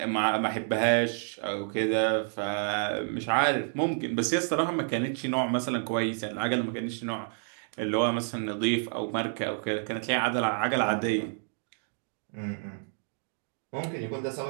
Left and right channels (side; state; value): left; silent; 58 dB below the other